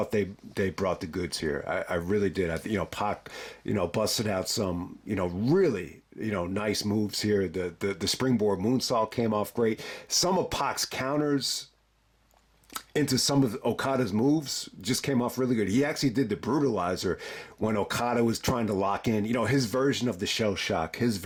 they brought the goods here. I really did. Pac, busted out some, really, nice moves here. The springboard moonsault came off great. Some of Pac's counters into some of Okada's moves just came off really good. He actually did the brutalizer when Okada was trying to lock in, his version of the shell shock, his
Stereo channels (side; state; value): both; identical; correlation 1.00